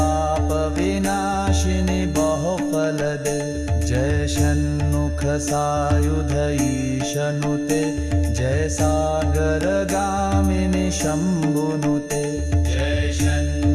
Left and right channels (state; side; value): identical; both; correlation 1.00